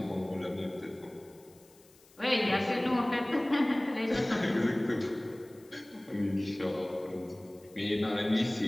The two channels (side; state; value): left; noise; hiss, 28 dB below the sound